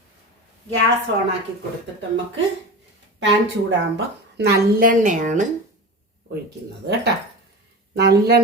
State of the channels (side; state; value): both; normal; correlation 0.28